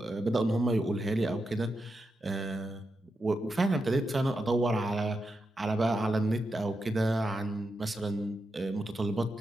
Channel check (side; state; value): both; normal; correlation 0.87